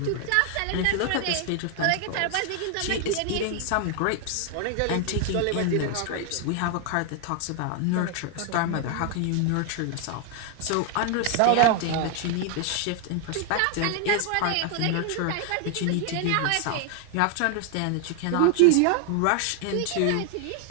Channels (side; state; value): both; different; correlation 0.00